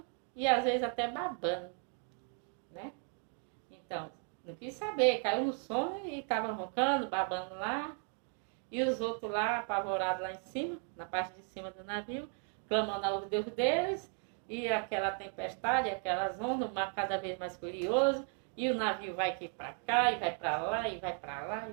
e às vezes até babando, né? Então, não quis saber, caiu no sono e estava roncando, babando lá. E os outros lá, apavorados lá em cima, na parte de cima do navio, clamando ao Deus deles. E aquela tempestade, aquelas ondas, o mar cada vez mais furioso. E o navio vai aqui para cá, e vai para lá, e vai para lá, e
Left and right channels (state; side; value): quieter; left; 38.5 dB